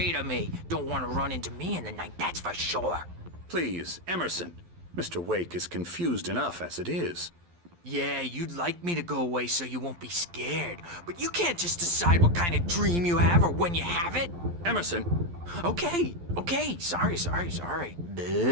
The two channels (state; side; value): late; left; 12 ms